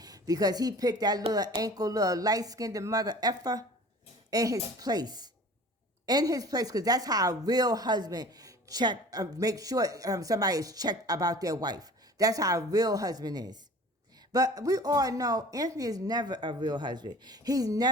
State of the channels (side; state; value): both; normal; correlation 0.44